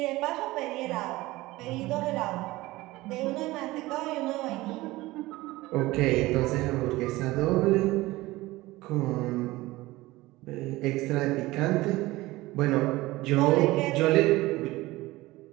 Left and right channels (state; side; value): quieter; left; 19.2 dB